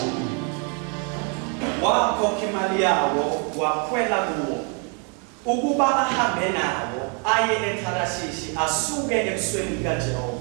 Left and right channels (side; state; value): left; quieter; 37.5 dB